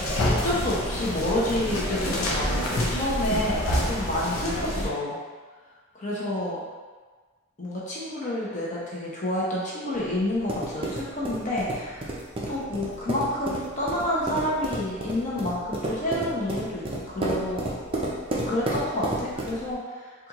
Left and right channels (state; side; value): normal; both; correlation 0.37